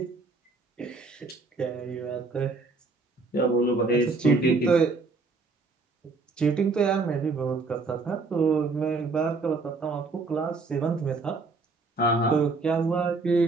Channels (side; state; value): left; quieter; 3.9 dB